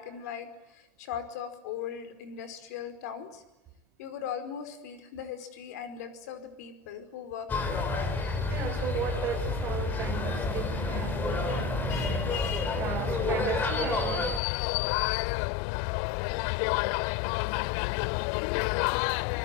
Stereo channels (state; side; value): drops out; right; at 14.4 s